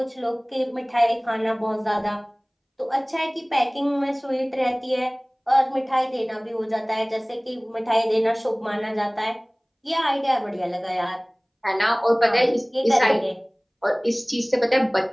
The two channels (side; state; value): both; identical; correlation 1.00